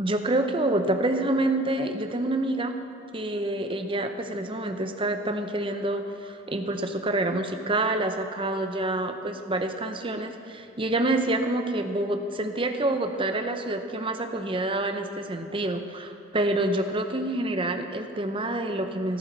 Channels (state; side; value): normal; both; correlation 0.44